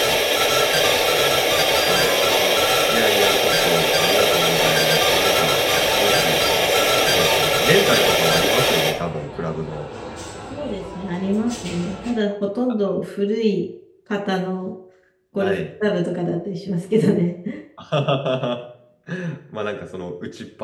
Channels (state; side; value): identical; both; correlation 1.00